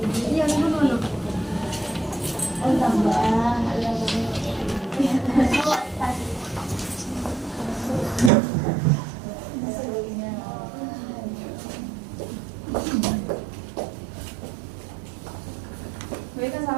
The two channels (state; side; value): drops out; left; at 8.3 s